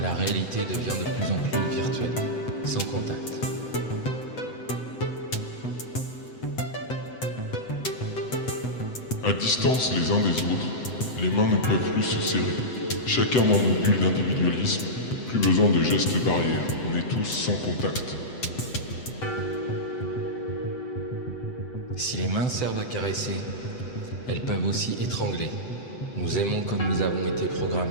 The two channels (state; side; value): late; right; 7.9 ms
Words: La réalité devient de plus en plus virtuelle, sans contact. À distance les uns des autres, les mains ne peuvent plus se serrer. Chacun dans nos bulles d'individualisme, plus besoin de gestes barrières, on est tous sans contact. Si les mains servent à caresser, elles peuvent aussi étrangler. Nous aimons comme nous avons été programmés.